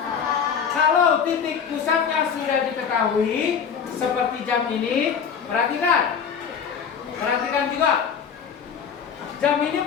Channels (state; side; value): quieter; right; 7.0 dB